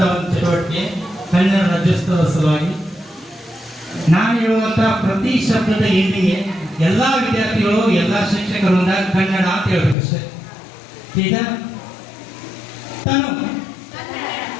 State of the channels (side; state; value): right; drops out; at 10.0 s